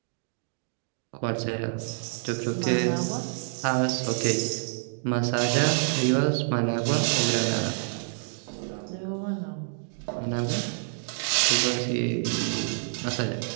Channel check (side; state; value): left; silent; digital silence